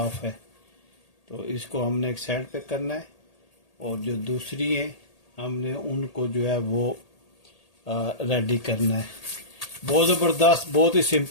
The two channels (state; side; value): late; right; 1.8 ms